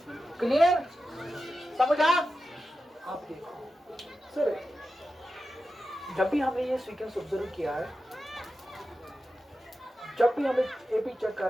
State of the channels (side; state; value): both; normal; correlation 0.91